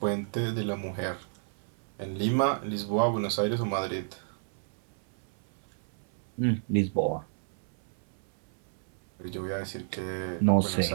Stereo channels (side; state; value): left; silent; 57 dB below the other